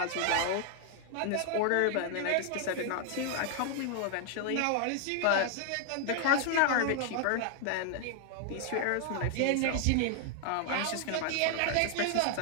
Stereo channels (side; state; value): both; different; correlation 0.00